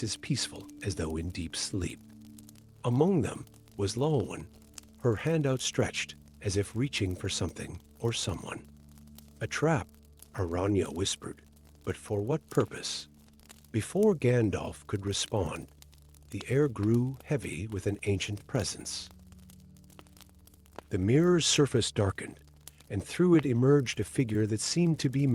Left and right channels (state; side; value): identical; both; correlation 1.00